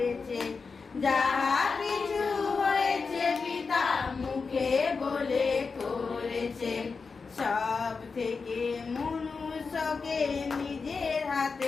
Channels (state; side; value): quieter; right; 4.8 dB